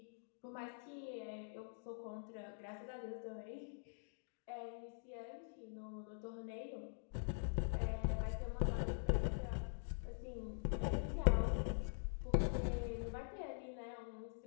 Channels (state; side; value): silent; right; digital silence